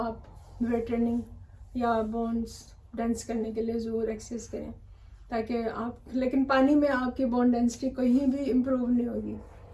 वेट ट्रेनिंग या बोन्स डेंस करने के लिए ज़रूर एक्सरसाइज करें, ताकि आप, लेकिन पानी में आपकी बोन डेंसिटी कहीं भी इम्प्रूव नहीं होगी।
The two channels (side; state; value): both; identical; correlation 1.00